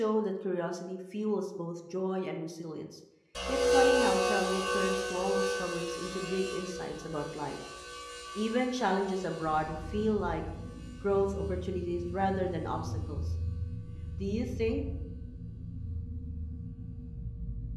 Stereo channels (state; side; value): identical; both; correlation 1.00